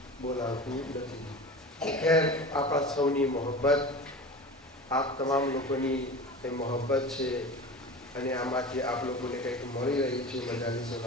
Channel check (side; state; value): both; normal; correlation 0.33